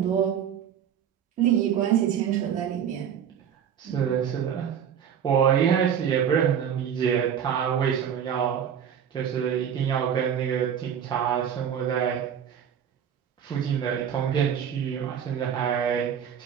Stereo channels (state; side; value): quieter; left; 8.6 dB